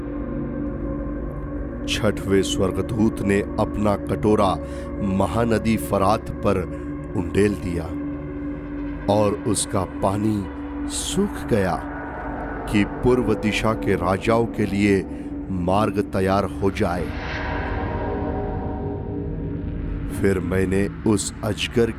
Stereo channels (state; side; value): identical; both; correlation 1.00